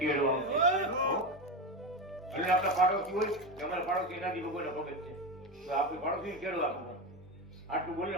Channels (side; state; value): both; normal; correlation 0.18